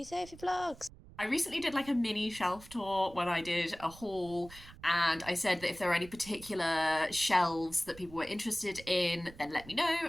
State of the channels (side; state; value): right; noise; rumble, 19 dB below the sound